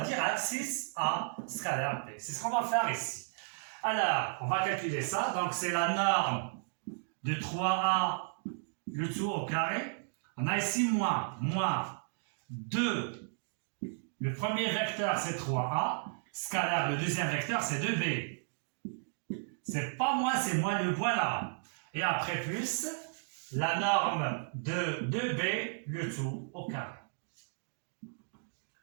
direct, 6a scalaire b. C'est ce qu'on va faire ici. Alors, on va calculer ça. Donc, c'est la norme de 3a, le tout au carré. On a ici moins 2. Le premier vecteur, c'est 3a. Scalaire, le deuxième vecteur, c'est 2b. C'est pas moins, c'est moins le voilà. Et après plus, la norme de 2b, le tout au carré,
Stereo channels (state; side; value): silent; left; digital silence